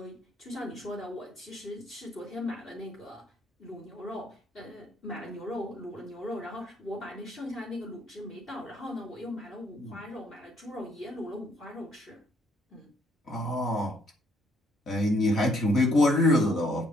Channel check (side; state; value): both; normal; correlation 0.68